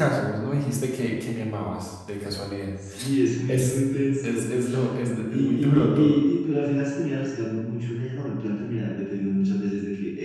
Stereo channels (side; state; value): both; identical; correlation 1.00